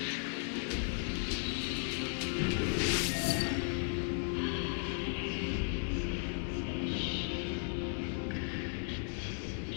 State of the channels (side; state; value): right; silent; 54 dB below the other